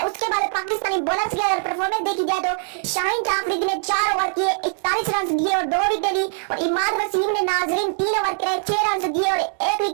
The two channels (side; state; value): left; silent; 55 dB below the other